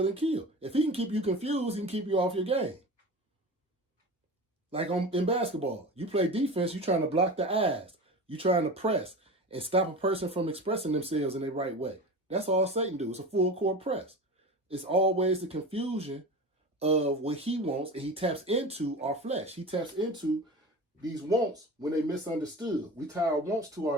and kill. If he can keep you confused, he can keep you off your game. Like in basketball, you play defense, you're trying to block the eyes. You're trying to press and stop a person from expressing themselves in the right way. That's all Satan do. It's a full court press. It's always the confusion of what he wants, and he taps into our flesh. He taps into these wants when they misunderstood. We tie our wants to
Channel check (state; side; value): normal; both; correlation 0.31